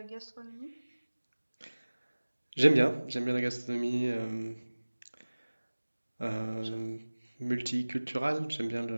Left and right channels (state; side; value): inverted; both; correlation -1.00